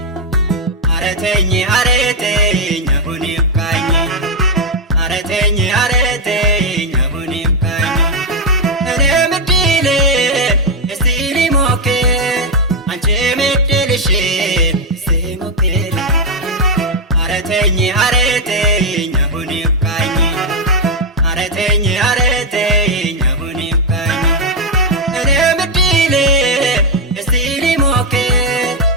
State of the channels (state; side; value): normal; both; correlation 0.00